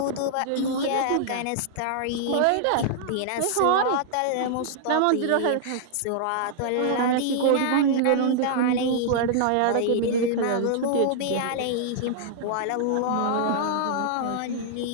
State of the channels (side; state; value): both; different; correlation -0.01